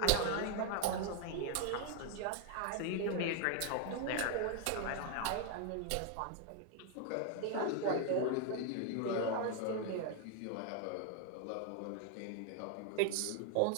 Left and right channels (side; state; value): both; different; correlation 0.01